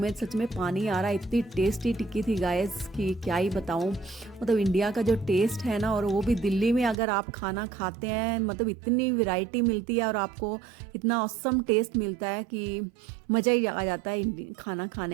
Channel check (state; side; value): drops out; left; at 7.0 s